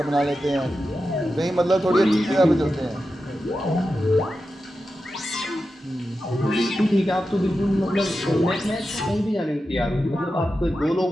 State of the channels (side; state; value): both; normal; correlation 0.91